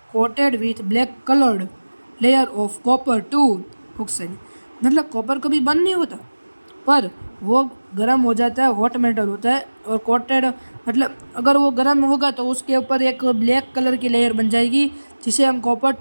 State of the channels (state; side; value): inverted; both; correlation -1.00